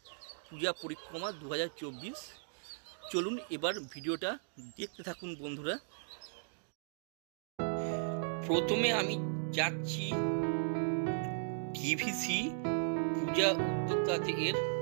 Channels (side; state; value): left; silent; digital silence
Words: পূজা পরিক্রমা 2024। চলুন এবার ভিডিওটা দেখতে থাকুন বন্ধুরা। প্রথমে আমি যাচ্ছি ভিভিসি পূজা উদ্যোক্তাদের